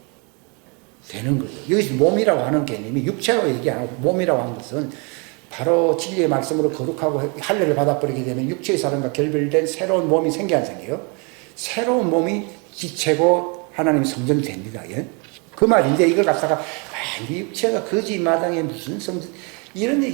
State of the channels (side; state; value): left; quieter; 32.8 dB